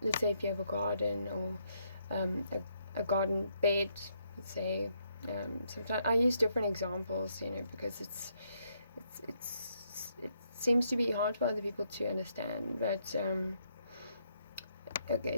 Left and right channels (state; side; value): inverted; both; correlation -0.75